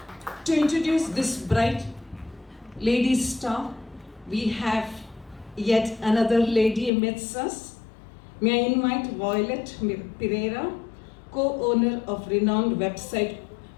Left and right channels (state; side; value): drops out; right; at 6.9 s